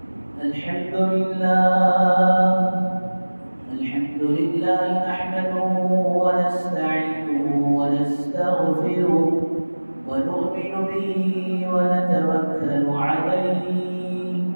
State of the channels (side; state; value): both; inverted; correlation -1.00